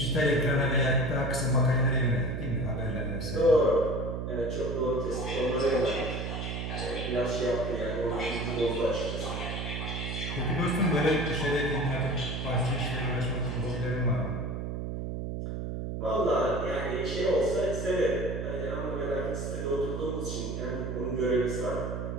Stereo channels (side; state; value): right; noise; hum, 4 dB below the sound